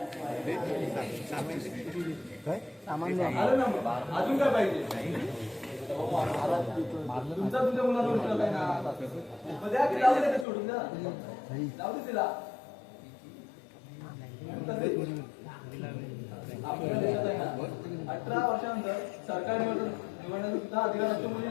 काय सामान द्या. आलं ना मग. अजून काय पाहिजे? तुमचा तुमच्या मुलाला विश्वास आहे ना. मग द्या की जाऊ दे ते सोडून द्या. जाऊ दे तिला. आपल्या देशात आहे ना 18 वर्षानंतर सरकार निवडण्याचा सुद्धा अधिकार असतो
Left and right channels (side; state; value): right; drops out; at 10.5 s